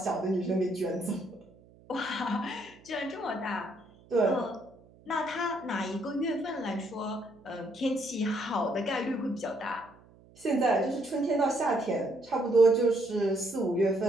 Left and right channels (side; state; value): right; noise; hum, 26 dB below the sound